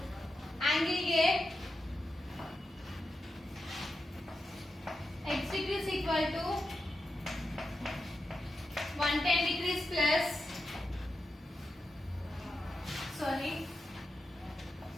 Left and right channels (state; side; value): normal; both; correlation 0.89